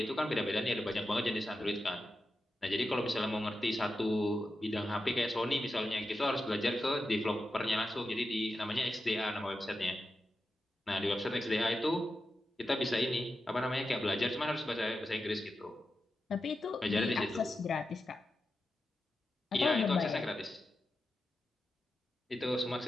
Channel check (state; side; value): normal; both; correlation 0.90